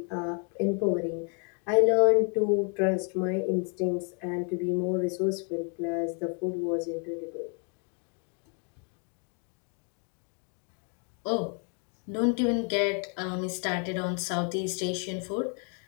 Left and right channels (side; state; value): right; quieter; 39.0 dB